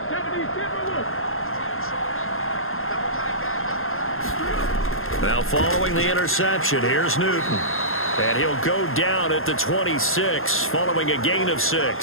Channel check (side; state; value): right; late; 0.60 ms